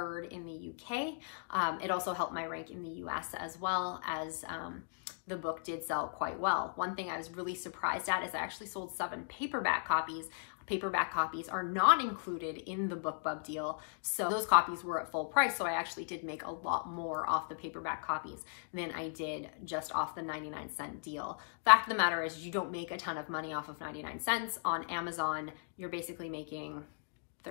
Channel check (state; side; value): silent; right; digital silence